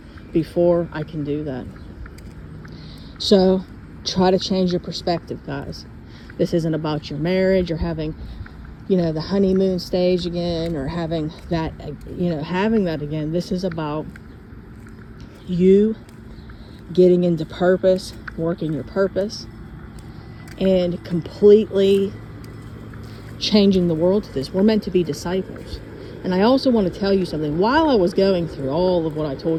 before I can do that. So try to change your perspective, guys. This isn't about your marriage or having, the honeymoon stage again, or having that again. This is about you getting into purpose, working your purpose, and completely changing the world to this. We're meant to be disciples. And I also want to tell you something. While I was going through all of what I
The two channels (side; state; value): both; identical; correlation 1.00